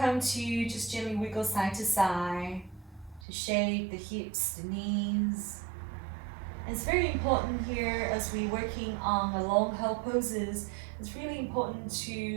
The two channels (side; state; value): left; drops out; at 3.2 s